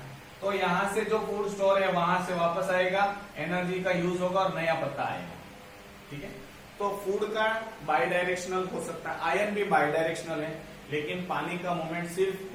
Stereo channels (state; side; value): identical; both; correlation 1.00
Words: तो यहां से जो फूड स्टोर है वहां से वापस आएगा, एनर्जी का यूज होगा और नया पत्ता आएगा, ठीक है। तो फूड का बाई डायरेक्शनल हो सकता है, आयन भी बाई डायरेक्शनल है, लेकिन पानी का मूवमेंट